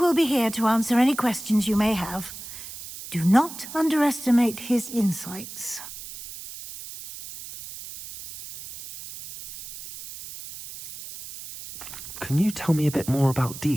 will be here to answer any questions you may have. Do not underestimate his insights. Can you tell me a bit more about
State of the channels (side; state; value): right; noise; hiss, 12 dB below the sound